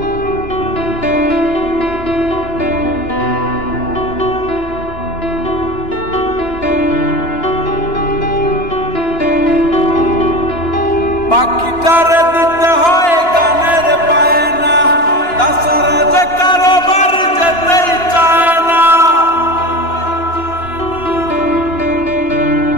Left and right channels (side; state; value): right; late; 2.9 ms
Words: পাখিটারে দিতে হয় গানের বায়না, তাছাড়া যে কারোবার যেতেই চায় না।